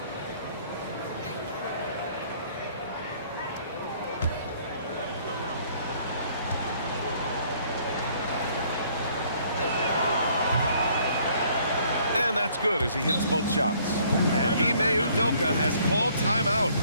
And that's good as he hits both shots. And Ime Udoka has called timeout.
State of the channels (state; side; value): inverted; both; correlation -0.61